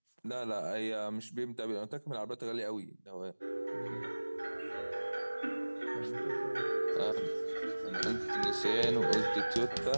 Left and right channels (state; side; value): inverted; both; correlation -1.00